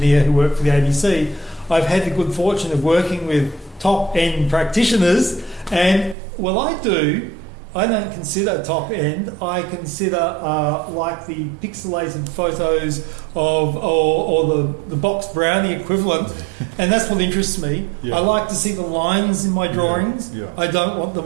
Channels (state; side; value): drops out; left; at 6.2 s